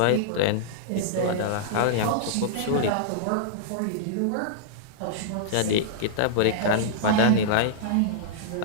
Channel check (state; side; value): different; both; correlation -0.02